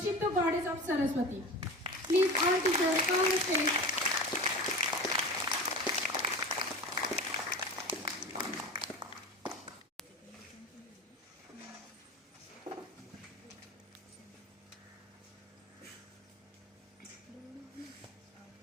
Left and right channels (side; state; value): both; normal; correlation 0.32